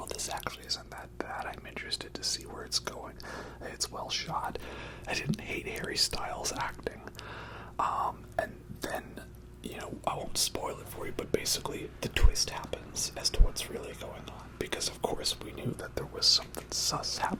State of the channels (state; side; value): identical; both; correlation 1.00